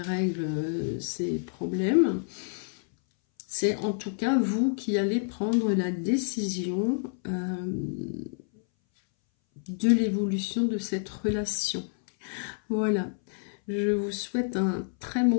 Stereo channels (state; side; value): silent; right; 59 dB below the other